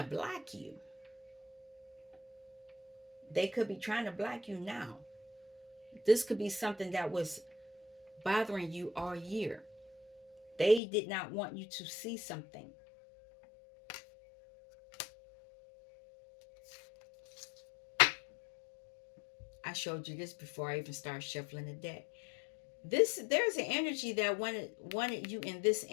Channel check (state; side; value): drops out; right; at 10.8 s